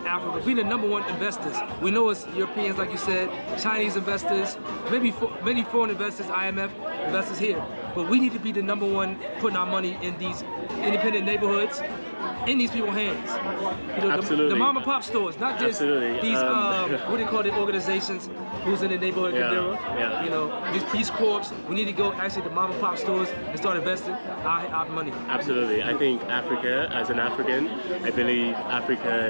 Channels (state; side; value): inverted; both; correlation -1.00